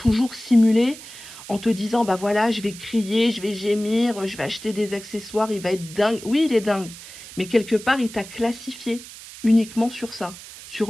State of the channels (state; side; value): noise; right; hiss, 15 dB below the sound